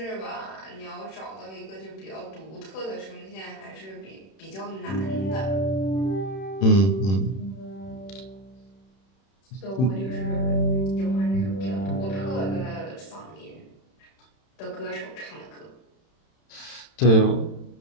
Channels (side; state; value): right; late; 31 ms